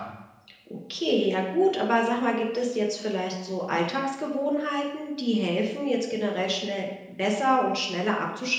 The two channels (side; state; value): both; identical; correlation 1.00